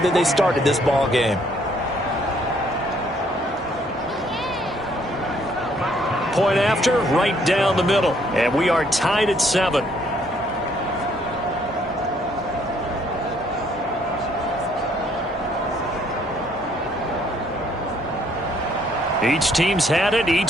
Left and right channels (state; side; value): normal; both; correlation 0.66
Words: they started this ball game. Point after, right down the middle. And we are tied at 7. Each team's had it.